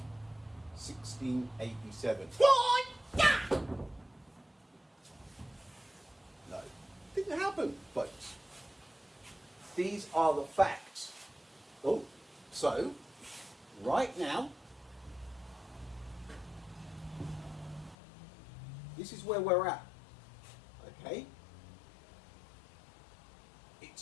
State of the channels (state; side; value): drops out; right; at 17.9 s